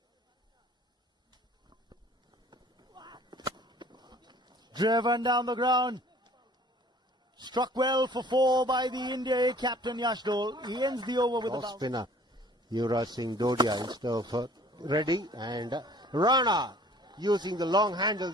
Driven down the ground. Struck well for 4 by the India A captain Yashdol. He ends the over with a Off bounce. spinner Yuvraj Singh Dodia instead of Reddy, and Rana using the long handle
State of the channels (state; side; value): normal; both; correlation 0.52